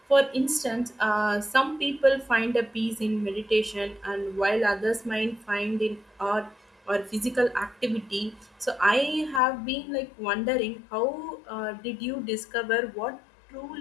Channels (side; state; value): right; drops out; at 9.4 s